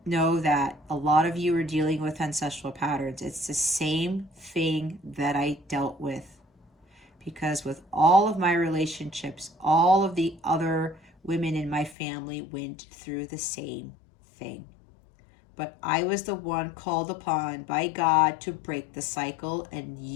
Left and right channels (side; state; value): right; drops out; at 12.0 s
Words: know that a lot of you are dealing with ancestral patterns. It's the same thing that I dealt with. Because with all of my relationships, all of the other women in my family went through the same thing. But I was the one called upon by God to break the cycle, and